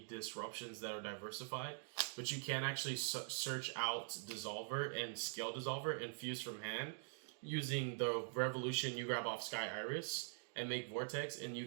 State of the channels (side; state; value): left; silent; digital silence